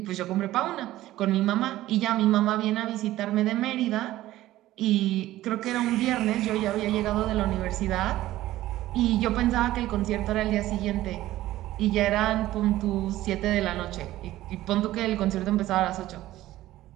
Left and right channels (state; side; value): quieter; left; 15.3 dB